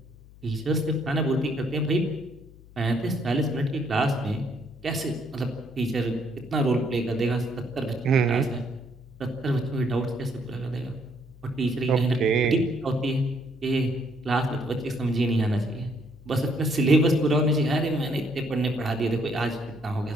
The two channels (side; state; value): left; noise; hum, 22 dB below the sound